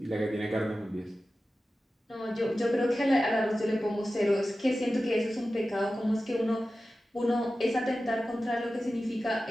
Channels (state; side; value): normal; both; correlation 0.94